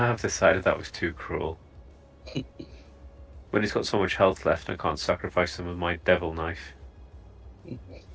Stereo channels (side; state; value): both; identical; correlation 1.00